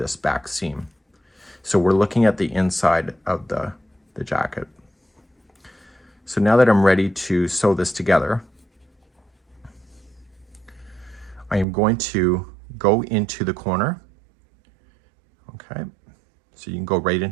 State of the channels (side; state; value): left; drops out; at 11.7 s